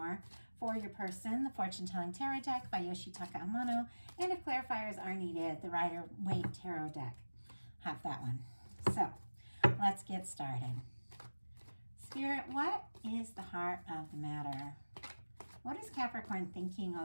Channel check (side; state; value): both; inverted; correlation -1.00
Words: For your person, the Fortune Telling Tarot deck by Yoshitaka Amano. And if clarifiers are needed, the Rider-Waite Tarot deck. Have that one. So let's get started. Spirit, what is the heart of the matter? What is Capricorn thinking